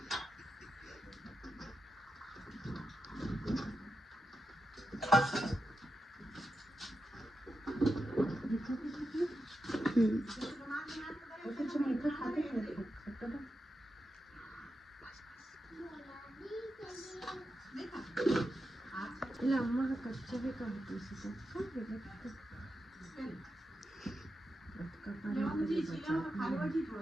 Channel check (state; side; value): normal; both; correlation 0.88